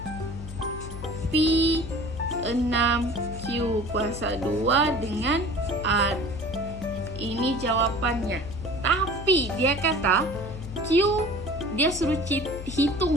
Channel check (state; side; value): noise; left; hum, 10 dB below the sound